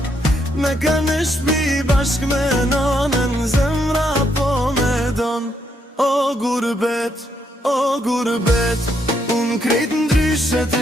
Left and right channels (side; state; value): both; normal; correlation 0.76